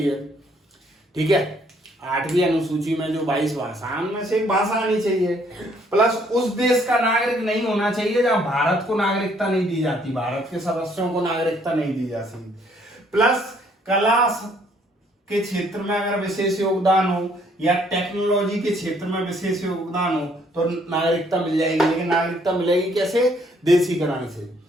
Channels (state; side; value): normal; both; correlation 0.65